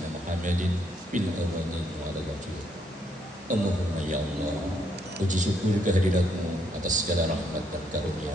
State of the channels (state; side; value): normal; both; correlation 0.73